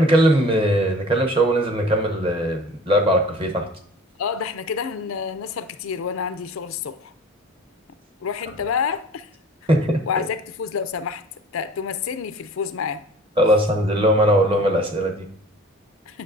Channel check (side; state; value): both; normal; correlation 0.45